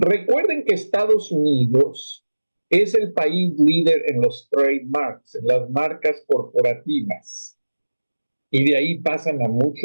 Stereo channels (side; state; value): both; inverted; correlation -1.00